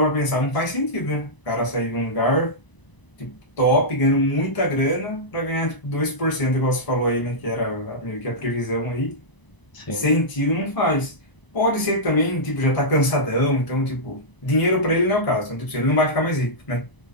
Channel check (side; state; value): right; late; 1.0 ms